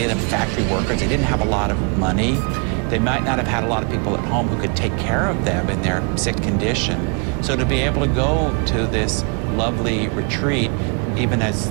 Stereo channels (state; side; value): quieter; left; 34.8 dB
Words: of them, factory workers. They didn't have a lot of money. They might not have had a lot of people at home who could take care of them in their sick condition. So to be able to go to this lovely retreat, even as